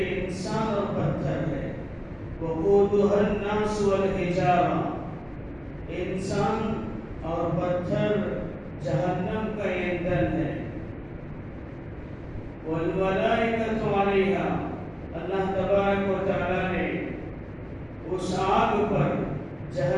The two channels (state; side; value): identical; both; correlation 1.00